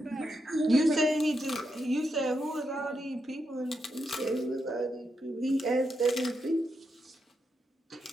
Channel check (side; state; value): both; normal; correlation 0.84